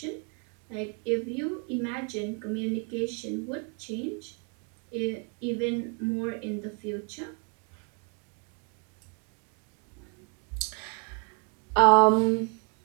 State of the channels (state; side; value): quieter; left; 36.5 dB